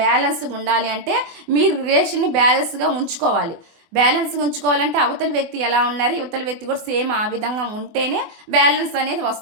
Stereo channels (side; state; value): left; late; 24 ms